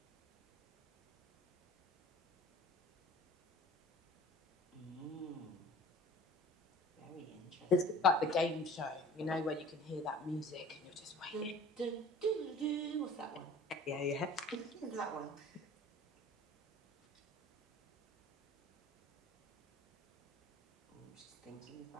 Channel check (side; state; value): both; normal; correlation 0.45